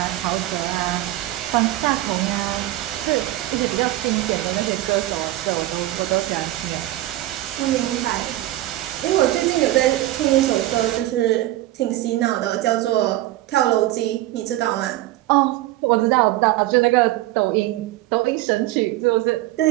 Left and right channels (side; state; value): left; quieter; 16.0 dB